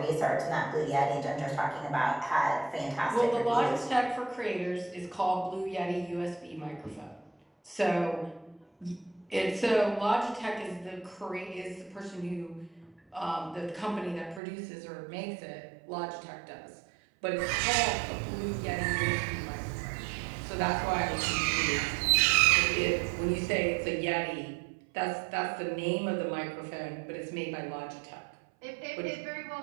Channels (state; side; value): drops out; left; at 14.4 s